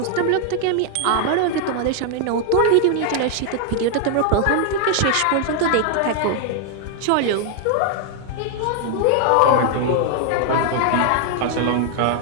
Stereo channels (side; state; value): both; different; correlation 0.00